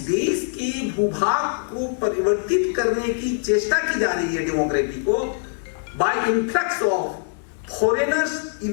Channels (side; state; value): right; silent; digital silence